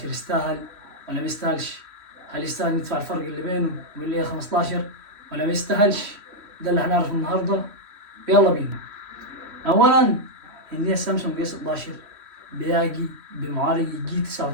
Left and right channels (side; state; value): left; late; 3.1 ms